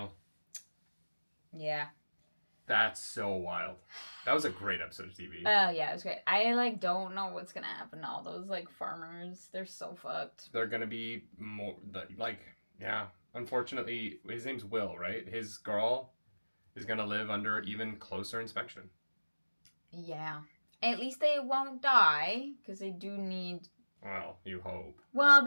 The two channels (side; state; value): both; inverted; correlation -1.00